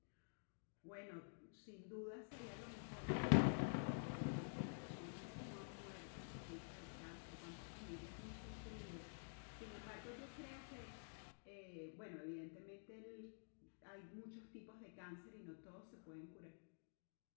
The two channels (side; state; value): right; silent; digital silence